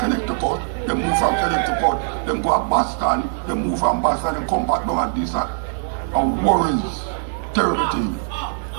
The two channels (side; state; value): left; silent; digital silence